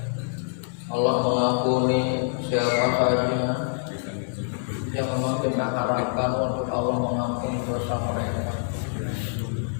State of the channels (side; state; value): right; silent; 61 dB below the other